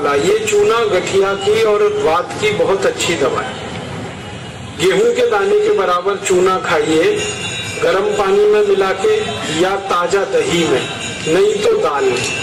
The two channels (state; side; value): identical; both; correlation 1.00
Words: ये चूना गठिया की और वात की बहुत अच्छी दवा है। गेहूं के दाने के बराबर चूना खाइए, गर्म पानी में मिला के या ताजा दही में, नहीं तो दाल में।